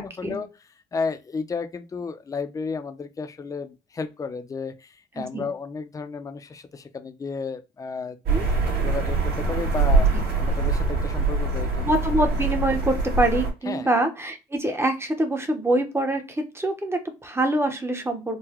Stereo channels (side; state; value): both; normal; correlation 0.55